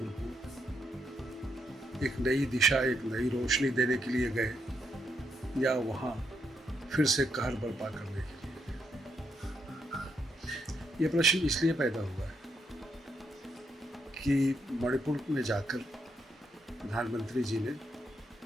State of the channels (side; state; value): both; normal; correlation 0.77